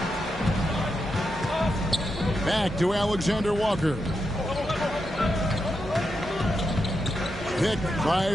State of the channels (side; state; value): both; normal; correlation 0.86